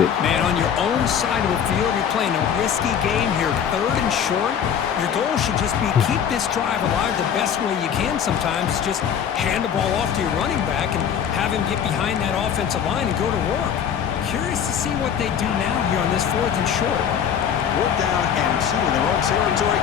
Man, on your own side of the field, you're playing a risky game here, 3rd and short. Your goal should just be keep this drive alive the best way you can sometimes. Just hand the ball off to your running back and have him get behind that offensive line and go to work. Curious to see what they do now here on this 4th and short. 4th down and 2 in their own territory.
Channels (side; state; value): right; quieter; 8.3 dB